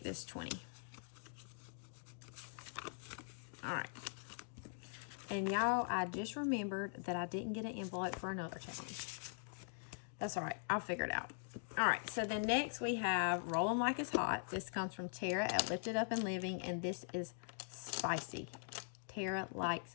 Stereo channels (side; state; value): right; silent; digital silence